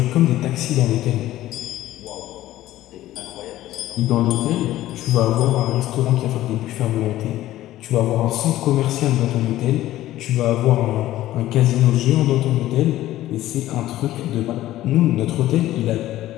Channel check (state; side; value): quieter; right; 14.7 dB